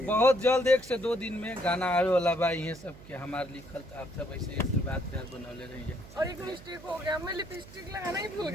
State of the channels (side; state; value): right; noise; hum, 18 dB below the sound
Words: बहुत जल्द 1 से 2 दिन में गाना आवे वाला बा। ये सब के हमारे लिखल तो आप सब ऐसे आशीर्वाद प्यार बनौले रहेंगे। और एक मिस्टेक हो गया, मैं लिपस्टिक लगाना ही भूल